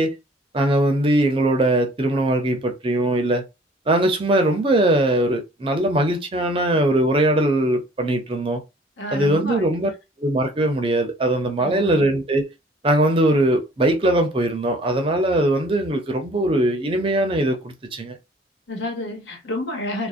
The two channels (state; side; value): normal; both; correlation 0.53